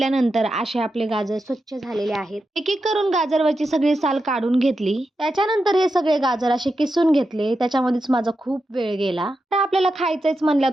असे आपले गाजर स्वच्छ झालेले आहेत. एक एक करून गाजरवरची सगळी साल काढून घेतली. त्याच्यानंतर हे सगळे गाजर असे किसून घेतले. त्याच्यामध्येच माझा खूप वेळ गेला. तर आपल्याला खायचंच म्हणलं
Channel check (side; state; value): both; normal; correlation 0.88